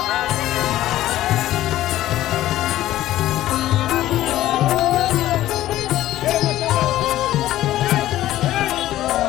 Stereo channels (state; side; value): quieter; right; 14.3 dB